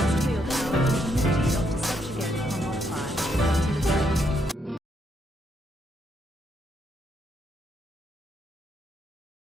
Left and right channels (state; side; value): normal; both; correlation 0.76